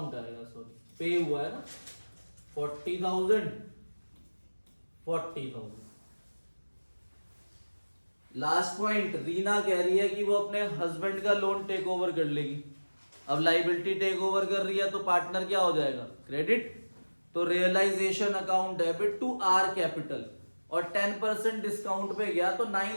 आएगा, सॉरी पे हुआ है ना, 40,000, 40,000। लास्ट पॉइंट, रीना कह रही है कि वो अपने हस्बैंड का लोन टेक ओवर कर लेगी। अब लाइबिलिटी टेक ओवर कर रही है तो पार्टनर क्या हो जाएगा? क्रेडिट। तो realisation account debit to R capital, और 10% डिस्काउंट पे गया तो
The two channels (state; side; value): inverted; both; correlation -1.00